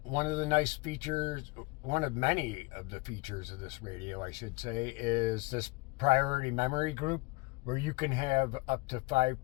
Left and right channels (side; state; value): right; quieter; 26.3 dB